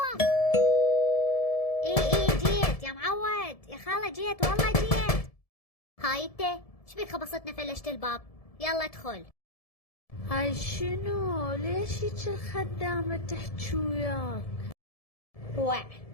ايه جيت يا معود، يا خالة جيت، والله جيت. هاي انت ايش بيك خبصتنا فلشت الباب؟ يلا ادخل. هاي شنو؟ ليش هيك الخدامة تحكي وياك؟ وع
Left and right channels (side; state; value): right; late; 1.7 ms